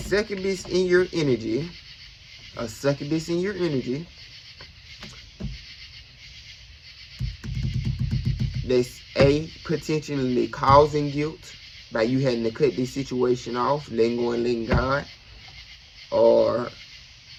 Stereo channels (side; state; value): both; identical; correlation 1.00